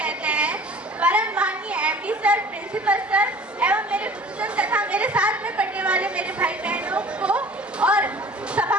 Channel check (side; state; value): both; normal; correlation 0.46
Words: हैं। परम माननीय एमडी सर, प्रिंसिपल सर एवं मेरे गुरुजन तथा मेरे साथ में पढ़ने वाले मेरे भाई बहनों को और